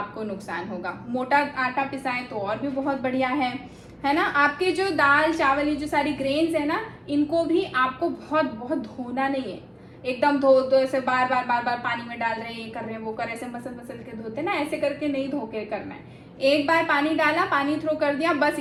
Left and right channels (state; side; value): identical; both; correlation 1.00